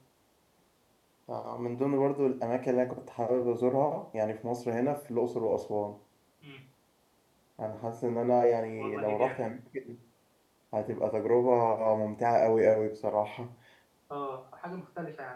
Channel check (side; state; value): both; identical; correlation 1.00